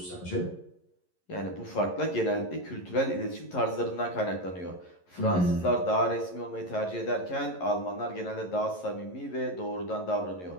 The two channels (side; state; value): right; late; 11 ms